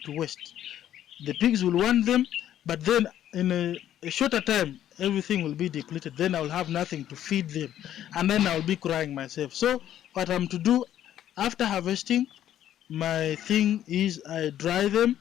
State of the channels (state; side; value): quieter; right; 11.4 dB